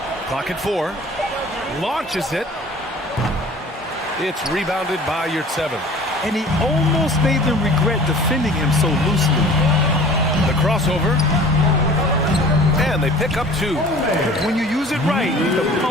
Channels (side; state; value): both; normal; correlation 0.46